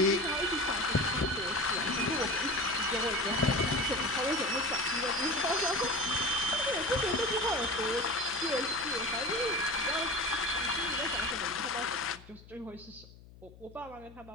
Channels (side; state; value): left; noise; hum, 21 dB below the sound